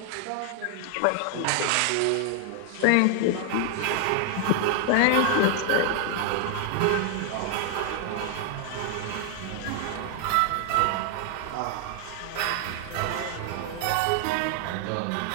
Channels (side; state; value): both; different; correlation 0.00